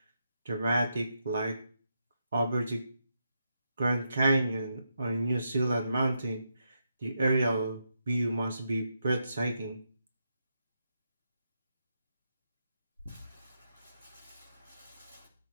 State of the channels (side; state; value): both; inverted; correlation -0.82